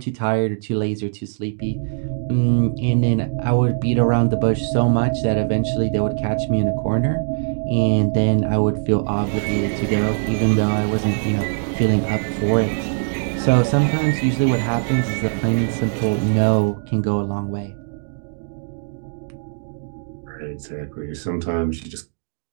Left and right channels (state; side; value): silent; left; digital silence